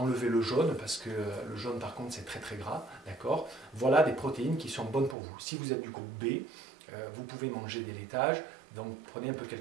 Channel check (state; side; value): drops out; left; at 5.2 s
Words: le jaune, parce que le jaune, par contre, c'est très très gras. D'accord? Voilà des protéines qui sont bonnes pour vous. Si vous êtes du groupe B, vous pouvez manger des laitages. Donc, prenez un peu